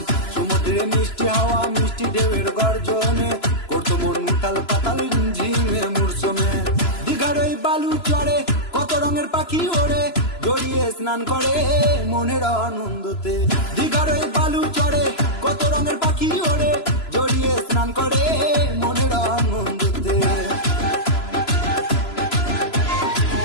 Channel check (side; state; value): right; late; 3.0 ms